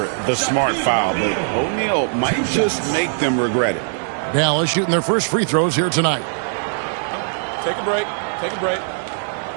the smart foul, but O'Neal might just make them regret it. Dallas shooting their first free throws here tonight. Take a break. Take a break.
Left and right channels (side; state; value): left; silent; 65 dB below the other